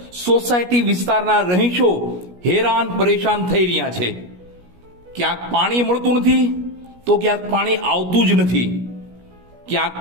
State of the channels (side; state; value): left; late; 17 ms